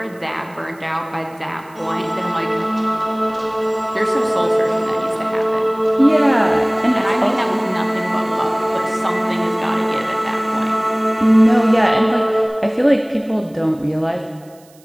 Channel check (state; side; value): noise; right; hiss, 29 dB below the sound